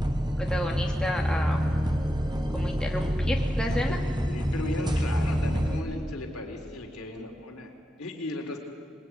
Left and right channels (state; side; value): normal; both; correlation 0.89